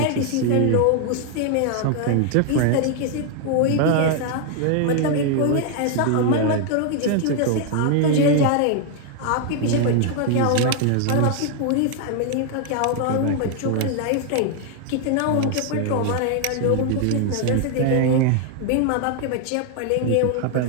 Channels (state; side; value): different; both; correlation 0.00